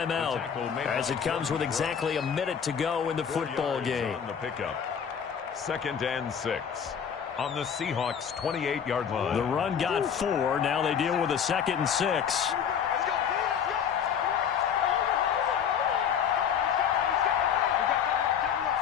as it comes with exactly a minute to go in the football game. On the pickup. 2nd and 6 on the Seahawks 28-yard line. The run got 4. Now they deal with a 2nd and 6.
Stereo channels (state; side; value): quieter; right; 7.7 dB